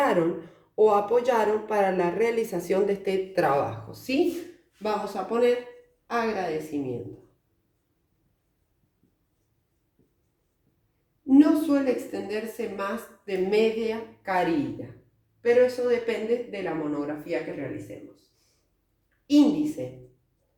o apoyaron para la realización de este trabajo, ¿sí? Vamos a poner agradecimiento. No suele extenderse más de media carilla, pero eso depende de la monografía que realicemos. Índice.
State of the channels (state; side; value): identical; both; correlation 1.00